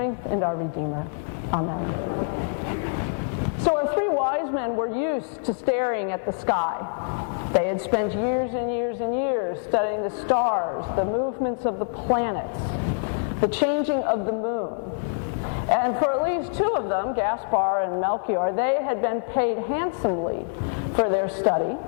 and our Redeemer. Amen. So our three wise men were used to staring at the sky. They had spent years and years and years studying the stars, the movements of the planets, the changing of the moon. And for at least two of them, Gaspar and Melchior, they had been paid handsomely for their study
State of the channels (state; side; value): silent; right; 61 dB below the other